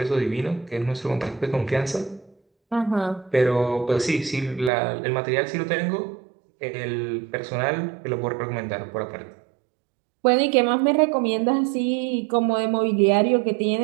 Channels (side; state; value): left; drops out; at 4.7 s